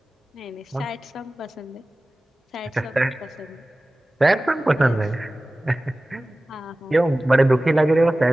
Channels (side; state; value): both; normal; correlation 0.97